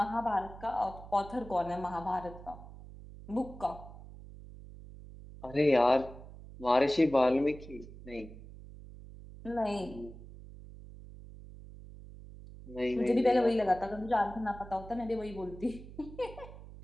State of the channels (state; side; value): noise; right; hum, 16 dB below the sound